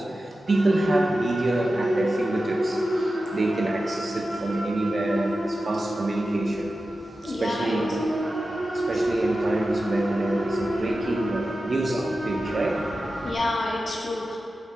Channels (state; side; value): normal; both; correlation 0.93